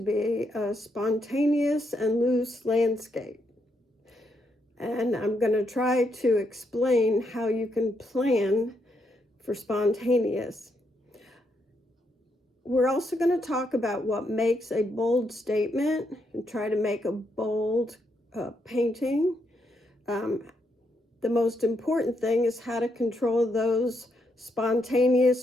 be a spontaneous and loose landscape. And I'm going to try to explain how you can plan for spontaneous. We're also going to talk about what makes a bold statement and try to make a bold painting. The most important thing is how to control those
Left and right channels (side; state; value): both; normal; correlation 0.79